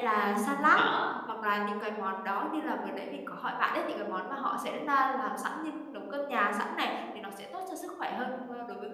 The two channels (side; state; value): both; identical; correlation 1.00